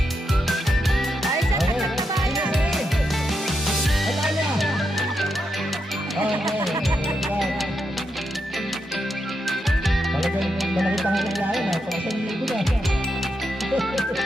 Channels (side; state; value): both; normal; correlation 0.84